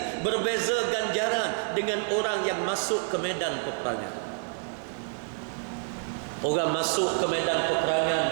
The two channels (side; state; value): left; silent; 57 dB below the other